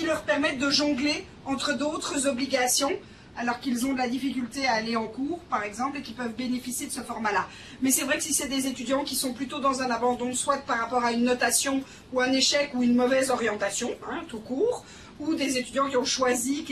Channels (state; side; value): identical; both; correlation 1.00